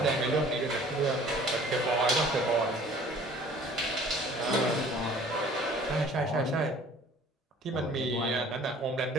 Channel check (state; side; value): normal; both; correlation 0.51